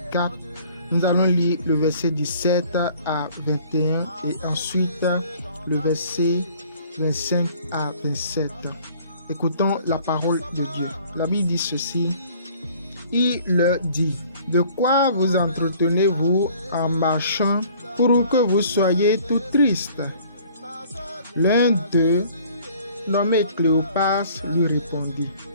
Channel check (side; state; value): both; inverted; correlation -0.54